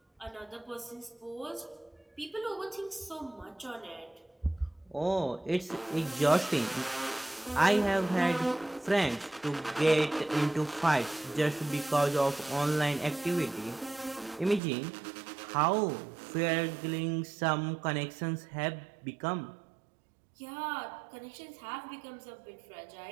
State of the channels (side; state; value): left; drops out; at 14.6 s